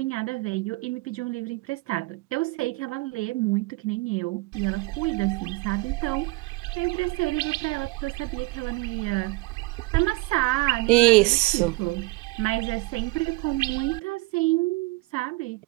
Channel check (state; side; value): quieter; left; 22.6 dB